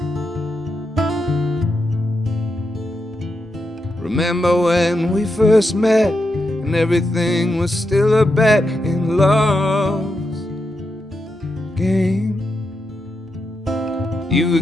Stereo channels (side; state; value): both; normal; correlation 0.85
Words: Remember when we first met and everything was still a bet in love's game? You